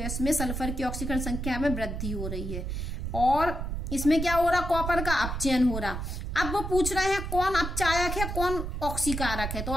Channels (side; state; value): right; noise; rumble, 4 dB below the sound